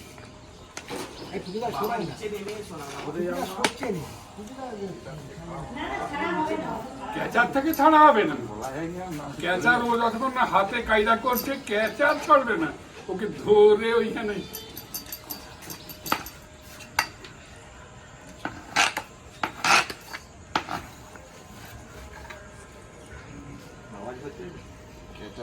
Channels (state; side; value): identical; both; correlation 1.00